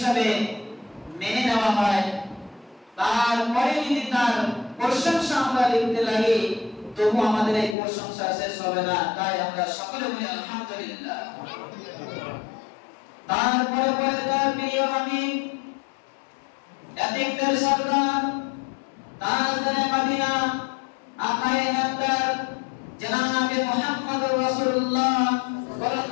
মেনে নেওয়া হয়, তারপরে যদি তার প্রশংসা আমরা লিখতে লাগি, তবু আমাদের এই প্রশংসা শেষ হবে না। তাই আমরা সকলে বলি আলহামদুলিল্লাহ। তারপরে পরে তার প্রিয় হাবিব, এতিকদের সরদার, তাজদারে মদিনা, আকায়ে নামদার জনাবে মুহাম্মদুর রাসূলুল্লাহ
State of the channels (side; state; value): right; drops out; at 7.8 s